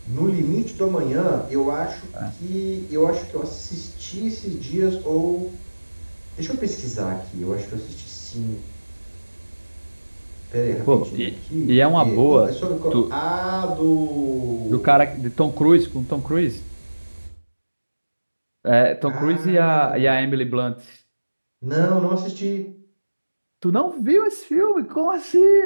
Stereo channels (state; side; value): inverted; both; correlation -1.00